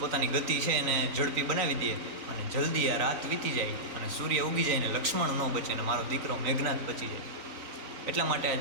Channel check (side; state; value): left; late; 4.0 ms